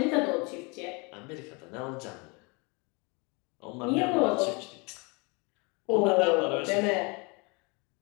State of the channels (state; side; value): quieter; right; 29.7 dB